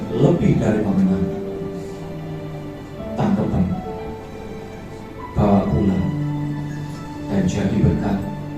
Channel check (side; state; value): both; identical; correlation 1.00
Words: lebih dari pemenang. Tangkapan, bawa pulang, dan jadi berkat